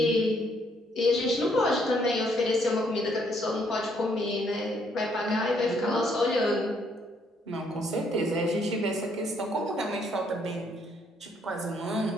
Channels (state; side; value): normal; both; correlation 0.69